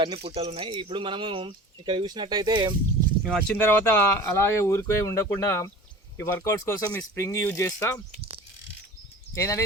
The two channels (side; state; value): both; normal; correlation 0.40